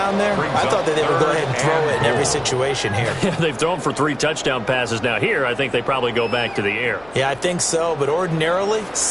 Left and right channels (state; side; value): noise; left; hum, 25 dB below the sound